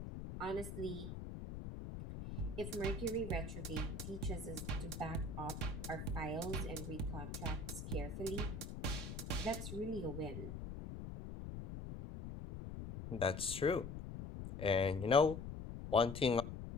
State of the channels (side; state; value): left; noise; rumble, 7 dB below the sound